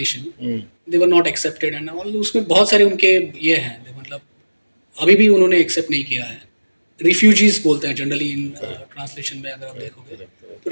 they were not accepted and all, उसमें बहुत सारे उनके ये हैं, मतलब अभी भी उन्होंने एक्सेप्ट नहीं किया है। रिफ्यूजीज बोलते हैं जनरली इन ट्रांसलेशन में, अगर आप देखोगे तो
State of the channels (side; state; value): both; inverted; correlation -1.00